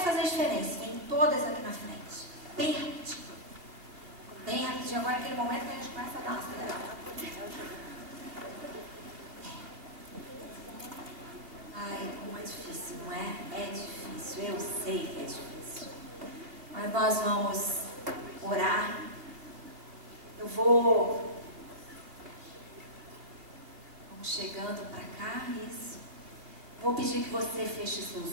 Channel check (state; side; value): late; left; 2.7 ms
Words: a diferença. Vem todas aqui na frente. Bem rapidinho. Bem rapidinho. Agora é aquele momento que a gente começa a dar uma acelerada. Ai, como é difícil, não é? É difícil, eu sei que é difícil. Mas nós vamos orar. Vamos chegando para cá, isso. Vou pedir que você feche